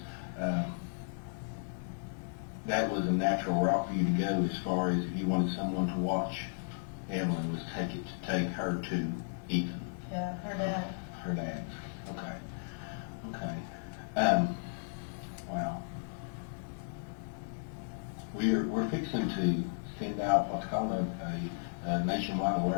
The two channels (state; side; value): silent; right; digital silence